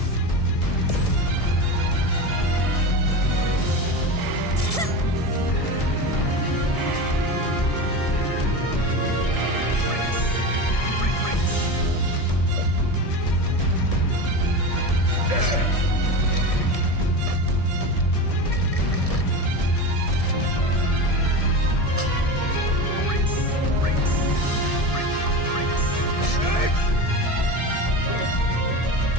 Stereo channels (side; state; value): right; late; 1.6 ms